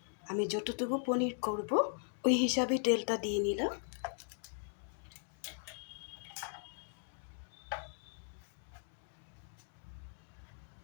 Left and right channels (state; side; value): silent; right; 52 dB below the other